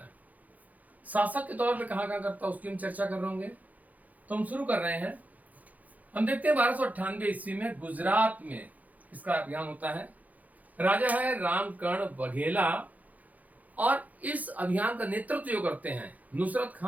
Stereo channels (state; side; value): late; left; 0.078 ms